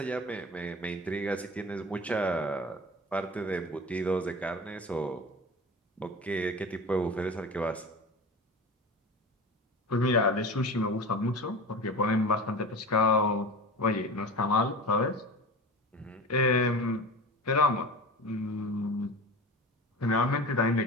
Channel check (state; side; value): normal; both; correlation 0.32